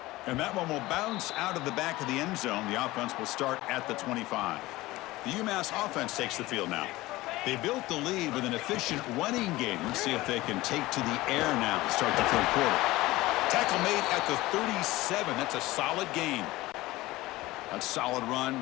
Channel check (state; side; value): quieter; right; 18.8 dB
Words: And that one will bounce out of the back of the end zone. The offense will start at the 25. The UMass offense takes the field now. They built the lead with an efficient running game. Let's see if they can take to the air now to start the third quarter. Tackle made at the 37. That's a solid gain. That's a solid